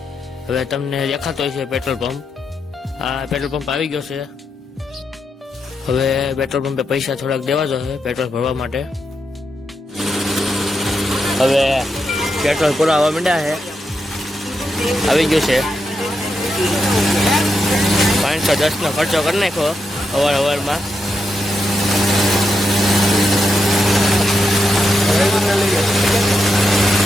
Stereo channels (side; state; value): both; normal; correlation 0.84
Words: હવે તમને દેખાતો હોય છે પેટ્રોલ પંપ। આ પેટ્રોલ પંપ આવી ગયો છે। હવે પેટ્રોલ પંપે પૈસા થોડાક દેવા જોઈએ પેટ્રોલ ભરવા માટે। હવે પેટ્રોલ પૂરા આવવા માંડ્યા છે, આવી ગયું છે। 510 નો ખર્ચો કરી નાખ્યો અવારમાં।